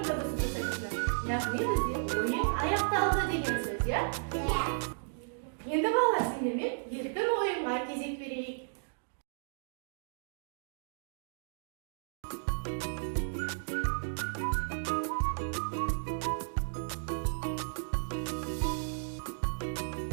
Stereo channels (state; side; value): silent; left; digital silence